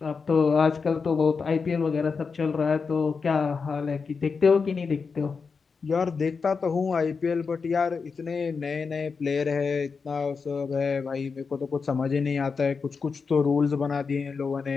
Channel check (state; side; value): quieter; right; 5.1 dB